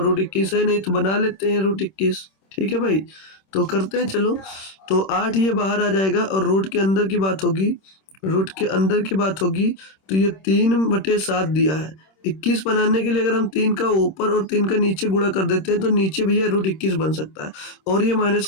रूट 21 है नहीं तो बना लेते हैं रूट 21, ठीक है भाई। तो करते हैं चलो, तो 8 ये बाहर आ जाएगा और रूट के अंदर की बात होगी, रूट के अंदर की बात होगी तो ये 3/7 दिया है। 21 बनाने के लिए अगर हम 3 का ऊपर और 3 का नीचे गुणा कर देते हैं तो नीचे भैया रूट 21 बन सकता है, और ये माइनस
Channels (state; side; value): late; right; 26 ms